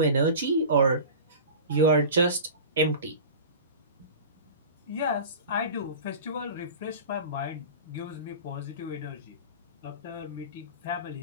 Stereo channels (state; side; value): inverted; both; correlation -0.35